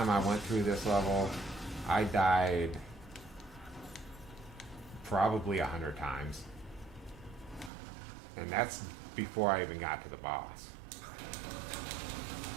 I went through this level, I died probably 100 times. And that's before I even got to the boss.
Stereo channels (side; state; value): left; drops out; at 7.7 s